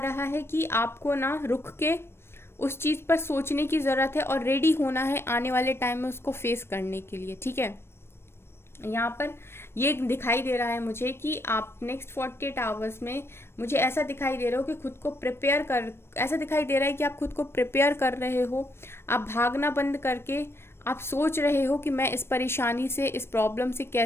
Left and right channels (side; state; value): right; late; 0.12 ms